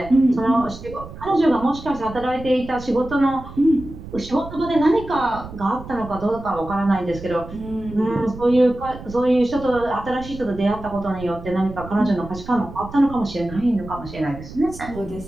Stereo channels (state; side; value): noise; right; rumble, 14 dB below the sound